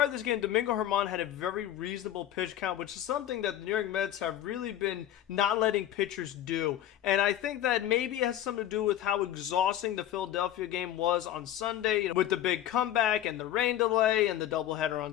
of this game, Domingo Germán had a very reasonable pitch count, which is something that the New York Mets have really been not letting pitchers do. And I think that maybe it has something to do with how exhausting the Philadelphia game was on Sunday, with the big comeback and the rain delay and the doubleheader on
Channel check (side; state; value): right; quieter; 12.0 dB